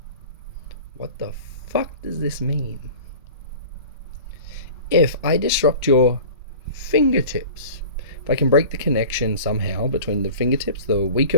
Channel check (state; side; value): inverted; both; correlation -0.40